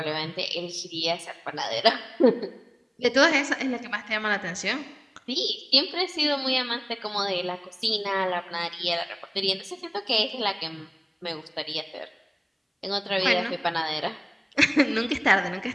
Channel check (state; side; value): identical; both; correlation 1.00